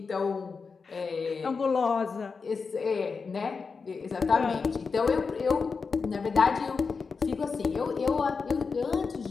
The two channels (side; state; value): right; quieter; 5.0 dB